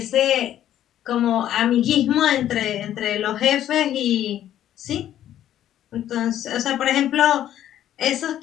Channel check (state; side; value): quieter; right; 11.7 dB